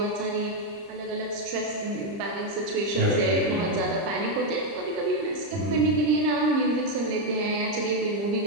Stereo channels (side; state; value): left; late; 30 ms